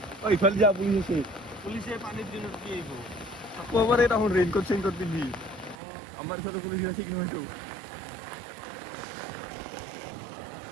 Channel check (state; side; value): drops out; left; at 5.8 s